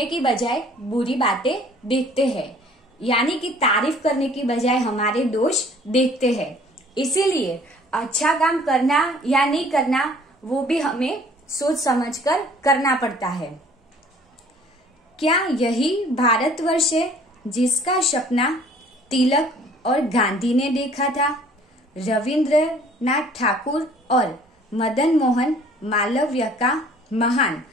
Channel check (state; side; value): normal; both; correlation 0.54